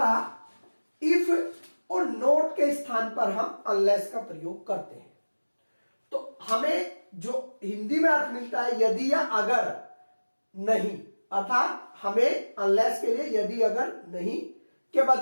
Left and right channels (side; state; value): both; inverted; correlation -1.00